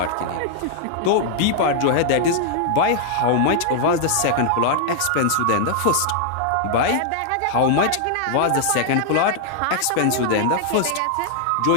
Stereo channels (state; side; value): different; both; correlation -0.01